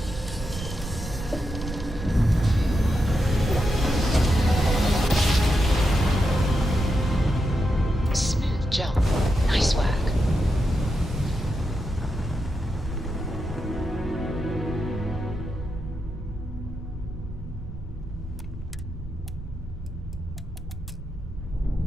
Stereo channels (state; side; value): normal; both; correlation 0.86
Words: Smooth jump. Nice work.